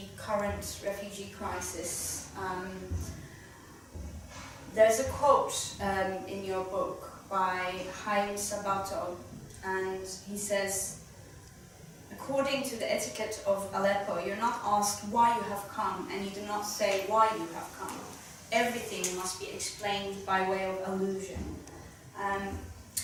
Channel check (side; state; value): both; identical; correlation 1.00